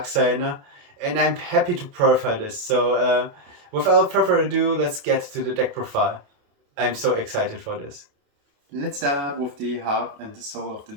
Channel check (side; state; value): left; late; 28 ms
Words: and I'm happy to profile this. So, without further ado, let's get to the deck profile. I'm so excited for this. Let's start with the heart and the soul of the